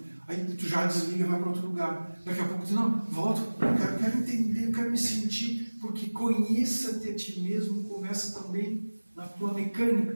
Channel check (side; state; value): both; inverted; correlation -1.00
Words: Aí tu já desliga e vai para outro lugar. Daqui a pouco tu não, volta, eu quero entender, eu quero me sentir, porque conheça-te a ti mesmo, começa também na tua